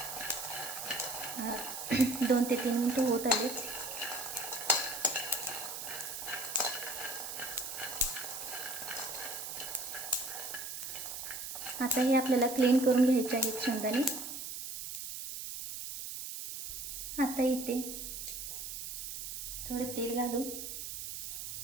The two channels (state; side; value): noise; right; hiss, 7 dB below the sound